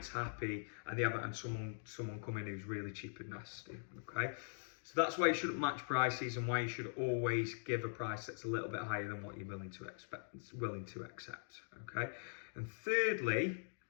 happy, and they haven't had someone come in who's really cheap and nasty. Okay. So that's why you shouldn't match prices, and why you should always give a price that's a little bit higher than what you're willing to accept. Okay. And thirdly,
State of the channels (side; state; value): right; silent; digital silence